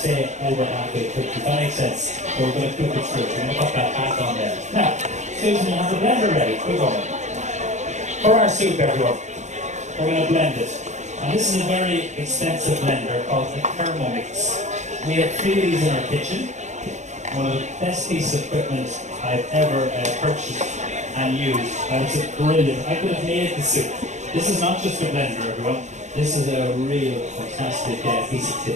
over halfway cooked. Does that make sense? So we're going to cook it through. We're going to put that back on there. Now, Susan, you have the blender ready. We're going. For our soup, everyone, we're going to blend it. And this is a very expensive blender called the Thermomix. We have 3 of these in our kitchen. One of the best pieces of equipment I've ever purchased and used. And it's brilliant. I could have made the soup. This is not just a blender, everyone. This is a real fantastic piece of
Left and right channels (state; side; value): late; left; 0.34 ms